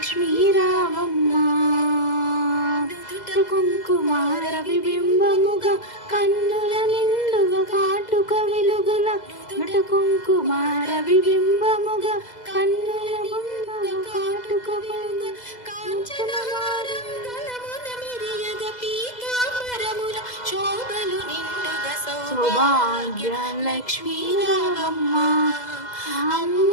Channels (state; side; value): late; right; 2.0 ms